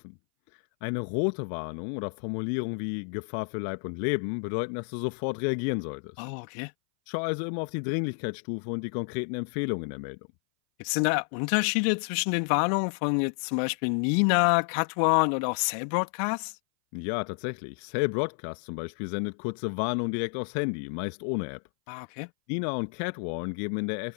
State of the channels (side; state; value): right; silent; 58 dB below the other